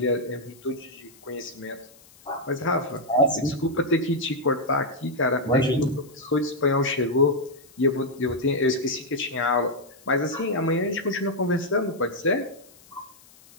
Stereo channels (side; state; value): left; noise; hiss, 26 dB below the sound